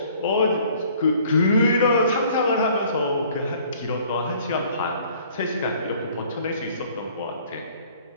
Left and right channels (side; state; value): both; inverted; correlation -0.56